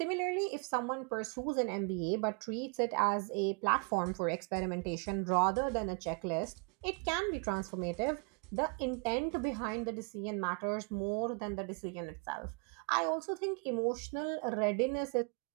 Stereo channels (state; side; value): quieter; left; 35.3 dB